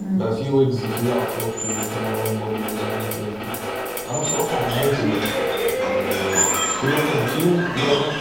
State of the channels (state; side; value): noise; left; rumble, 24 dB below the sound